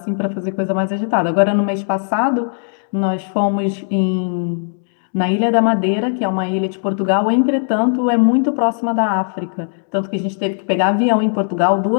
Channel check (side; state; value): right; silent; 67 dB below the other